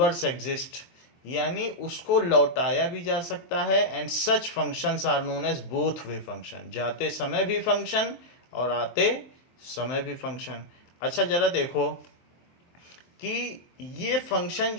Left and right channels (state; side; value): late; right; 23 ms